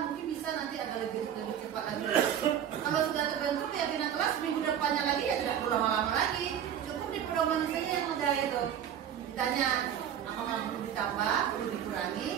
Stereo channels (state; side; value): quieter; left; 9.5 dB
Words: mungkin bisa nanti agak lebih cepat lagi. Kalau sudah terbentuk keyakinan kelas minggu depannya lagi ya tidak perlu lama-lama lagi. Cukup di pedoman saja yang ada itu. Ditanya apakah perlu ditambah, perlu dikurangi.